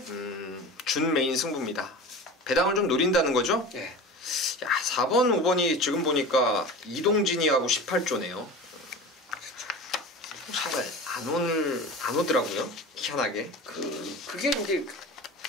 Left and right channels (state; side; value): normal; both; correlation 0.33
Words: 준메인 승부입니다. 배당을 좀 노린다는 거죠? 네. 야, 4번, 5번이 지금 보니까 이동진이하고 18조네요. 잘 안 오더라고요. 희한하게. 그게 이제